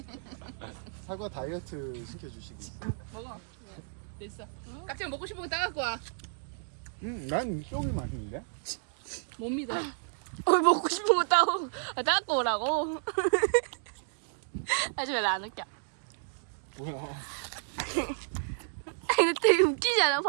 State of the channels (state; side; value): silent; left; digital silence